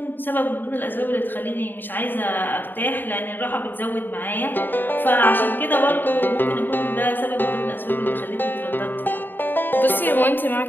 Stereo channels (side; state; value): right; late; 0.092 ms